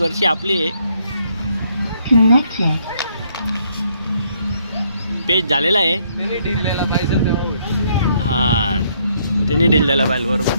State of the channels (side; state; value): both; inverted; correlation -0.70